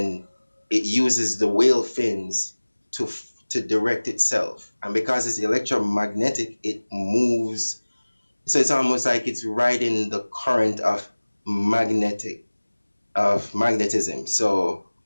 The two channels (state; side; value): inverted; both; correlation -1.00